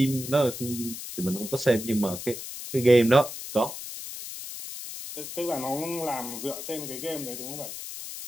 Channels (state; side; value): noise; left; hiss, 9 dB below the sound